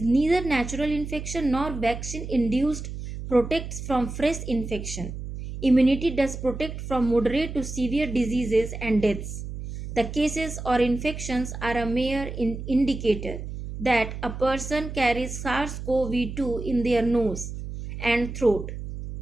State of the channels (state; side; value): noise; right; hum, 8 dB below the sound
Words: neither natural infection nor vaccine induced protects from fresh infection. Immunity does protect from moderate to severe diseases and deaths. The cases or infections are a mere indicator that a person carries SARS-CoV-2 in their nose and throat.